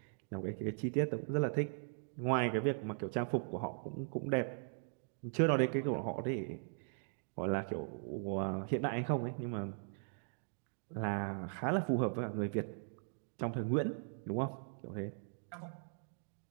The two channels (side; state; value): left; silent; digital silence